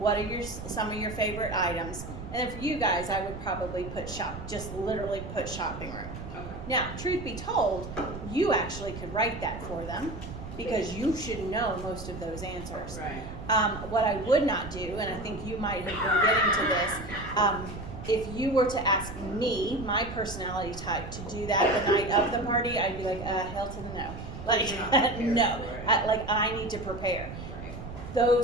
are some of your favorite items? And then for you guys, I would probably put just literally put shopping room. Okay. Now, truth be told, you actually could write that for them because you should know most of those answers. Right. What I would not do, and I think you might have been getting to this, if you were to ask me, my personality type, to do that the night of the party, I'd be like, hell to the no. Like, You're not prepared no. for it. I need to prepare. Right.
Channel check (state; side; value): noise; right; rumble, 10 dB below the sound